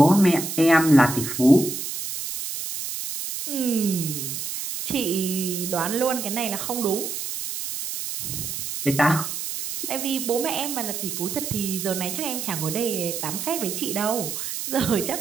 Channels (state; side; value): noise; right; hiss, 5 dB below the sound